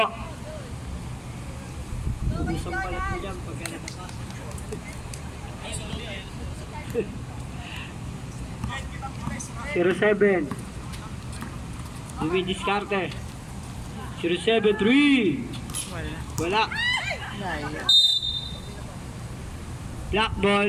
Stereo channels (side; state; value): both; identical; correlation 1.00